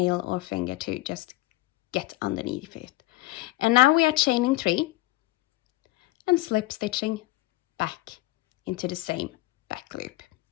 or finger to just get underneath it. And now we are chaining 3 and slip stitching back into the same back loop.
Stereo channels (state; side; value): quieter; right; 18.9 dB